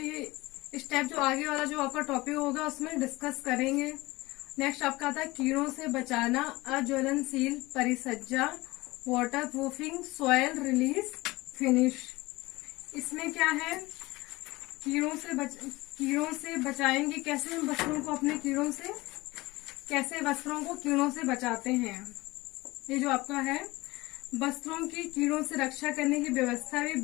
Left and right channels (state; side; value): quieter; right; 20.9 dB